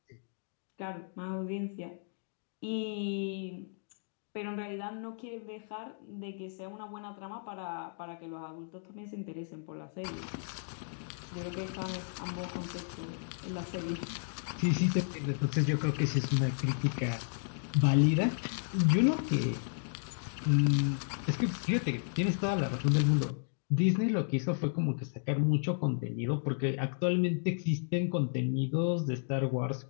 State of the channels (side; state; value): right; silent; digital silence